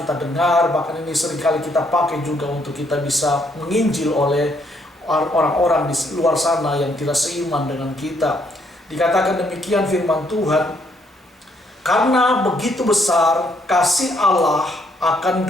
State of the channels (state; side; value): normal; both; correlation 0.71